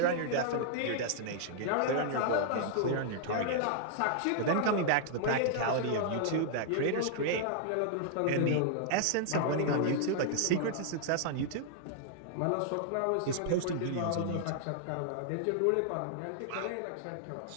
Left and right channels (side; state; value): both; different; correlation -0.01